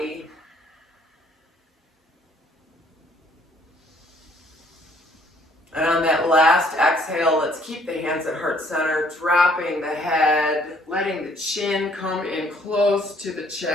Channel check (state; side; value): normal; both; correlation 0.62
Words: And on that last exhale, let's keep the hands at heart center, dropping the head, letting the chin come in close to the